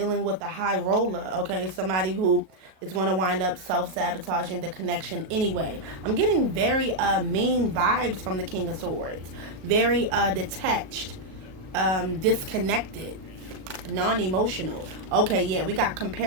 with the high roller. Okay, somebody who is going to wind up self-sabotaging the connection anyway. I'm getting very mean vibes from the King of Swords. Very detached, disconnected, non-emotional. Okay, yeah, we got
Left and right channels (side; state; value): left; late; 37 ms